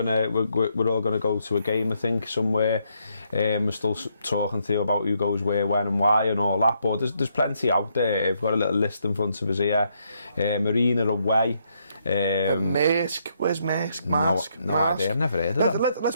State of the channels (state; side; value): inverted; both; correlation -0.75